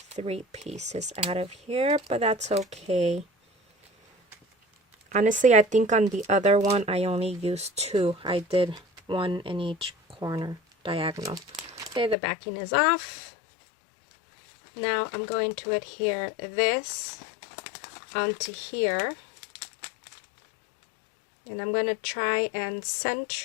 3 pieces out of here, but that's okay. Honestly, I think on the other one, I only used 2. I did 1 in each corner, diagonal. Okay, the backing is off. Now I'm going to adhere this onto here. And I'm going to try and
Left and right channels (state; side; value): drops out; right; at 12.2 s